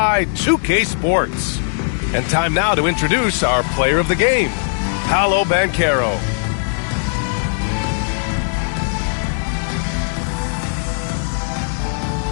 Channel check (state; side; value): silent; right; digital silence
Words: 2K Sports. And time now to introduce our player of the game, Paolo Banchero.